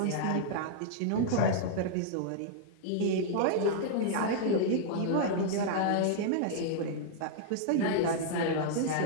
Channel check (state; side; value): different; both; correlation -0.01